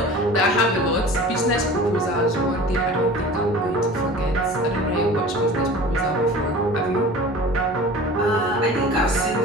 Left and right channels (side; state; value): both; normal; correlation 0.39